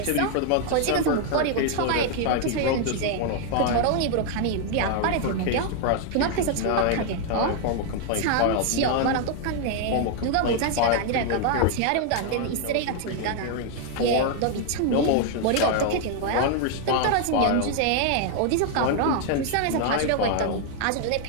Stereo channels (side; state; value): both; different; correlation 0.00